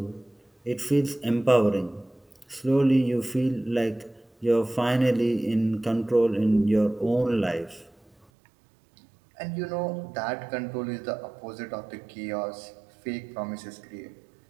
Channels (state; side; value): drops out; left; at 8.2 s